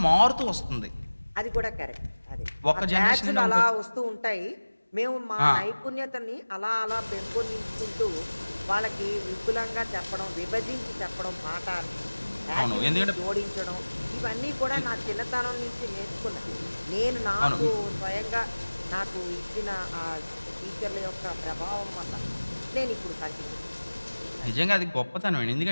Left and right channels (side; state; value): both; inverted; correlation -1.00